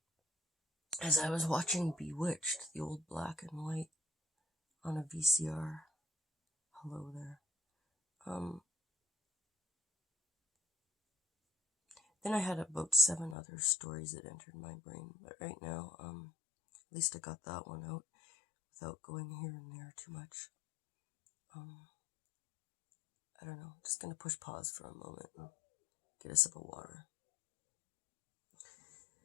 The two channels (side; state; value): right; drops out; at 13.4 s